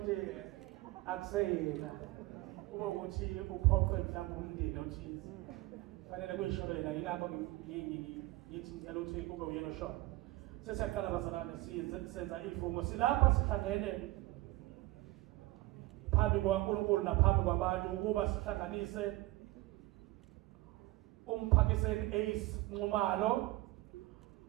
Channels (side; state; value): left; quieter; 19.6 dB